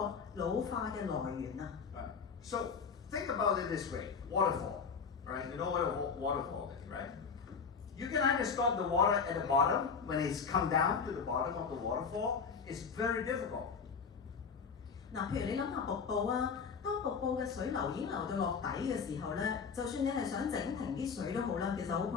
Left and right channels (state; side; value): quieter; right; 5.8 dB